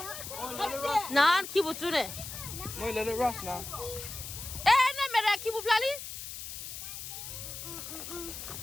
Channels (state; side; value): noise; left; hiss, 9 dB below the sound